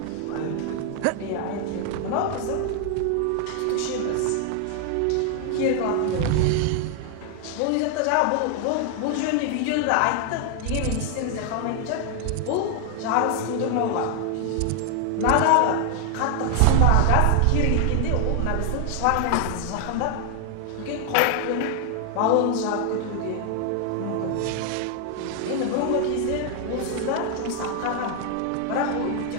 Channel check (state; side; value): different; both; correlation 0.00